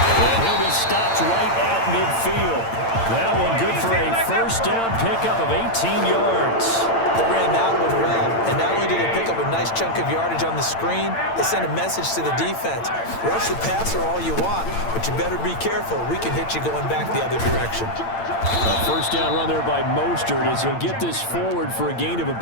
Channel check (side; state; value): right; late; 8.8 ms